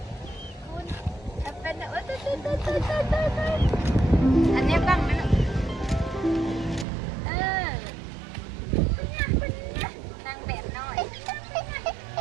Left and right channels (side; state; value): left; drops out; at 6.9 s